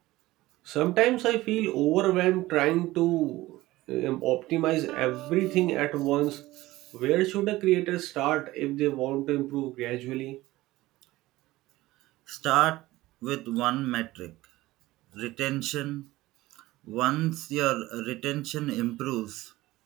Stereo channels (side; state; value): left; quieter; 17.9 dB